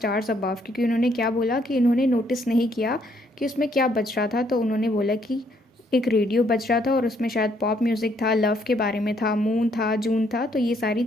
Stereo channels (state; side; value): normal; both; correlation 0.69